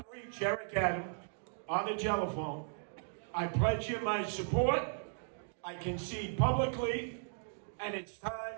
reach Eric Adams on the telephone, I pledge him my support. I concede publicly, and it's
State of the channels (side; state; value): left; silent; digital silence